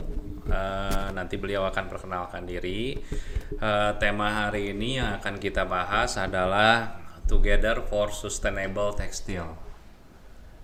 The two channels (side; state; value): both; identical; correlation 1.00